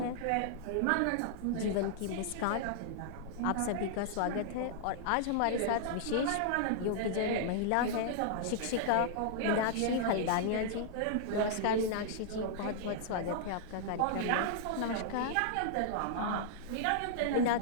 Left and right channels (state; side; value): different; both; correlation -0.01